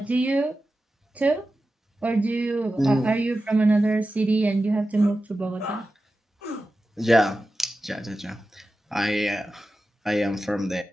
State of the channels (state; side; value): normal; both; correlation 0.93